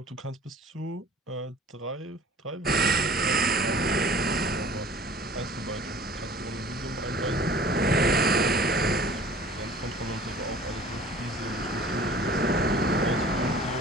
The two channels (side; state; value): both; normal; correlation 0.47